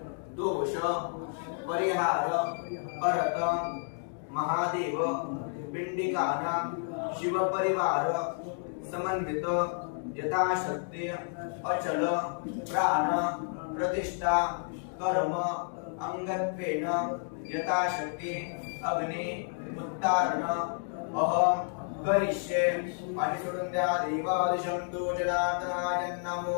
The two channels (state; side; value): silent; right; 57 dB below the other